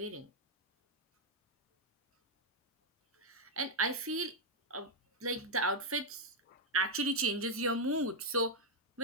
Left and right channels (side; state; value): both; normal; correlation -0.01